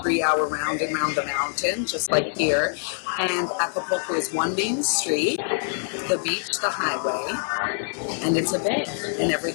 3-hour round and round the mountain, just like here. And Acapulco is one main street, the beach, the highway, and it's a bay, and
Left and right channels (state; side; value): silent; right; 58 dB below the other